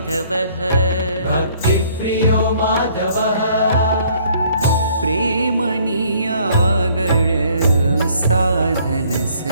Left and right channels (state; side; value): inverted; both; correlation -0.60